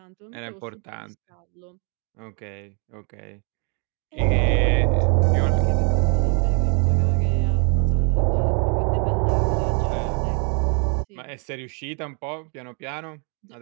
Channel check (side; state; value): left; quieter; 37.6 dB